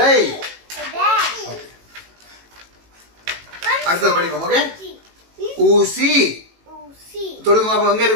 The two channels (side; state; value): left; late; 18 ms